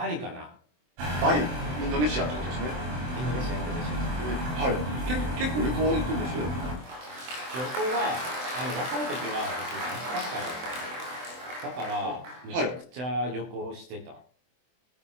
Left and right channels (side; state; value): left; late; 24 ms